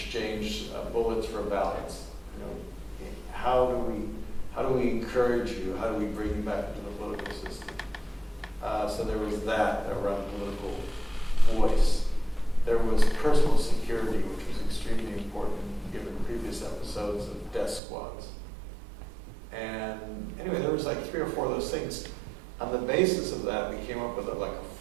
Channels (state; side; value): drops out; left; at 17.8 s